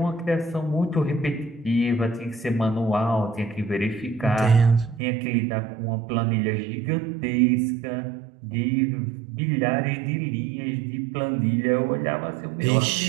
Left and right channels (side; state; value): left; drops out; at 5.0 s